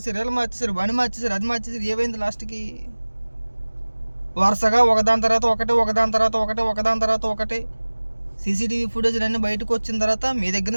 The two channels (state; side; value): inverted; both; correlation -1.00